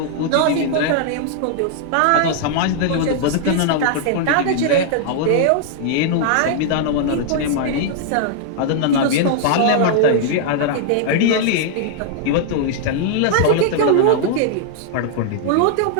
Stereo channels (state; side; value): different; both; correlation -0.01